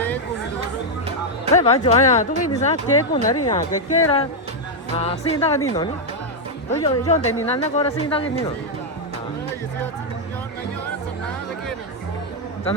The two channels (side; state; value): both; normal; correlation 0.00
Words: Thế bảo cho anh tôi cái gì sao kế của nó đi nhá, cái là sinh ra cái gì nó nhỉ? Tôi cho để nhìn nó có là sinh ra cái gì nó. Chẳng